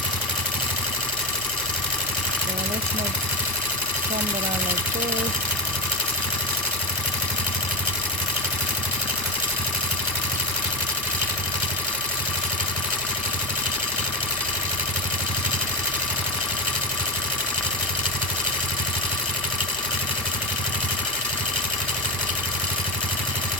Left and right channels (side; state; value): both; normal; correlation 0.15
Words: Let's make some that are like this.